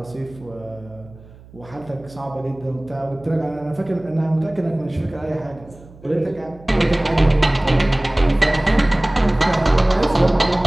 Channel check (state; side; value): noise; right; hum, 22 dB below the sound